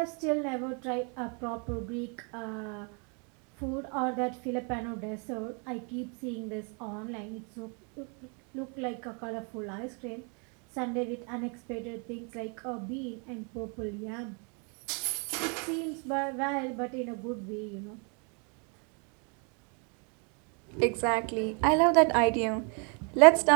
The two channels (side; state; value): left; quieter; 36.5 dB